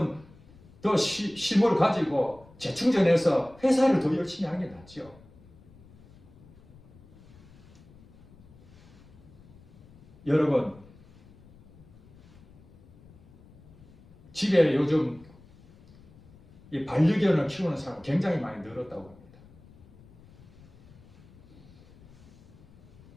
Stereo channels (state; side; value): noise; left; rumble, 24 dB below the sound